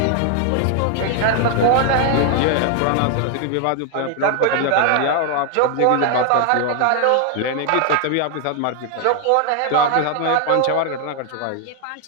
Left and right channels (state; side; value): different; both; correlation 0.00